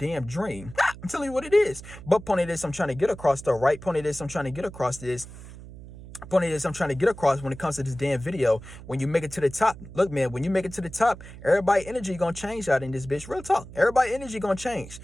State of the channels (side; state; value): right; noise; hum, 15 dB below the sound